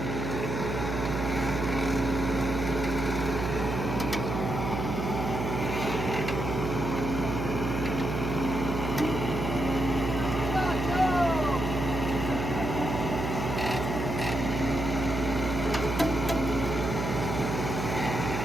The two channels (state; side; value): noise; right; hum, 3 dB below the sound